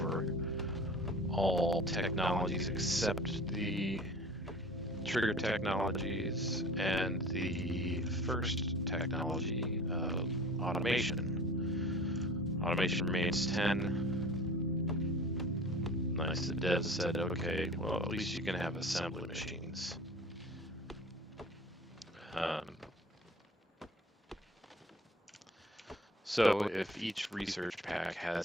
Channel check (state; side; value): normal; both; correlation 0.42